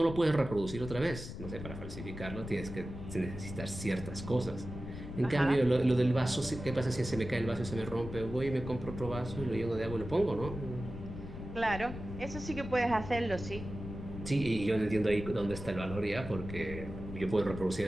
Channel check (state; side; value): noise; left; rumble, 9 dB below the sound